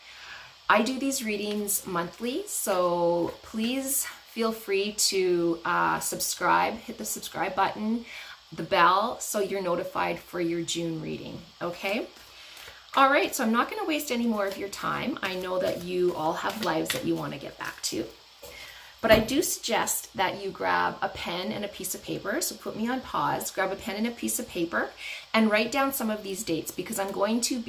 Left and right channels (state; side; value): identical; both; correlation 1.00